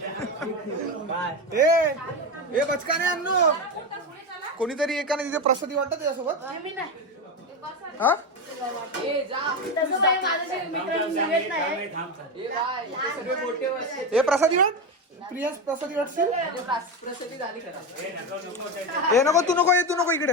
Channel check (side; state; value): both; normal; correlation 0.16